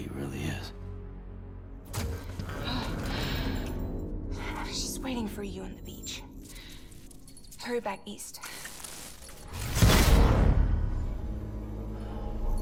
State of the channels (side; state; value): both; identical; correlation 1.00